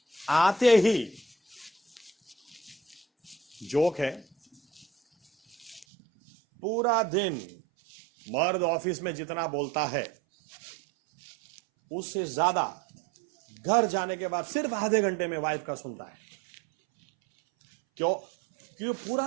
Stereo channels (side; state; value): left; drops out; at 5.9 s